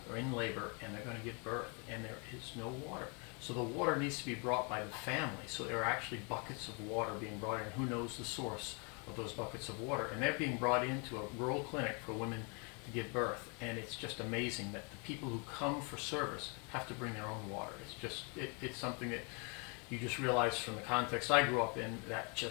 in labor and they're going to give birth, and there is no water. So the water needs to be brought by the family. So there are actually buckets of water being brought in. Who knows the source of those buckets of water? And they're being brought into a rural clinic for women to give birth. And it's just amazing that the people who come for service have to bring their own water. It's something that you just realize from the context I grew up in, that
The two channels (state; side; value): quieter; right; 34.3 dB